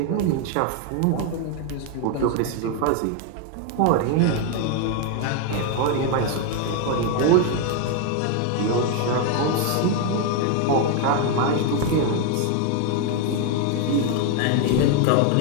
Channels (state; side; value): different; both; correlation 0.01